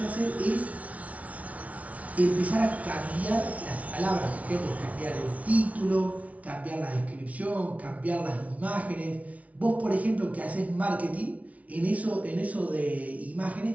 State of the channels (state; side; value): late; left; 0.068 ms